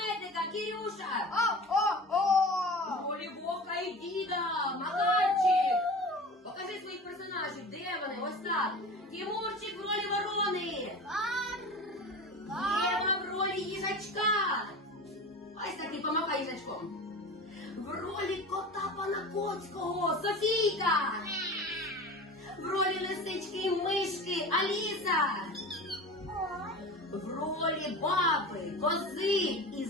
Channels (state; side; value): normal; both; correlation 0.34